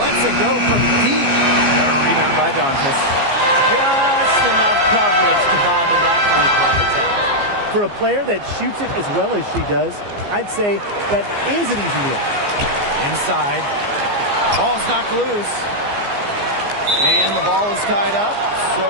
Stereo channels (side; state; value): left; late; 15 ms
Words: it go from deep. A rebound by Dantas. Just enough coverage to bother that three-point attempt. For a player that shoots it as well as she does, I'd say that is an easy deal. Inside. Ball's knocked loose. And the ball is tied up,